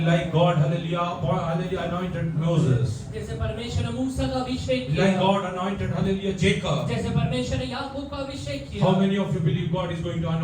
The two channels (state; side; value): identical; both; correlation 1.00